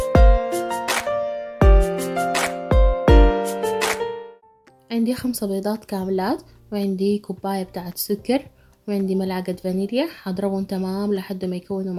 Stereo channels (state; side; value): identical; both; correlation 1.00